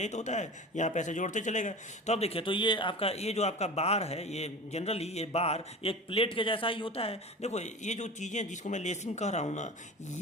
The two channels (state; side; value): normal; both; correlation 0.33